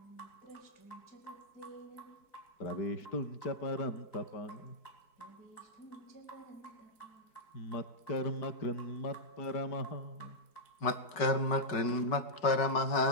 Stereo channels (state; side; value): late; right; 4.6 ms